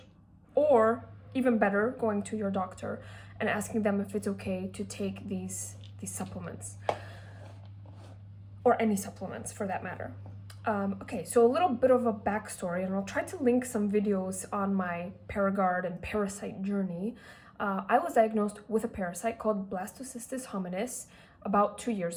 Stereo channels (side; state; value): both; identical; correlation 1.00